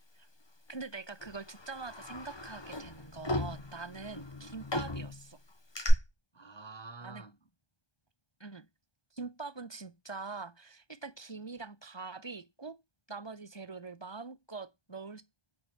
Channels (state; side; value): late; right; 1.2 ms